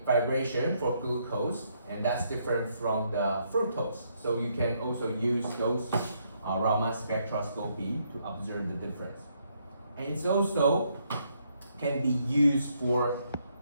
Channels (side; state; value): both; inverted; correlation -0.73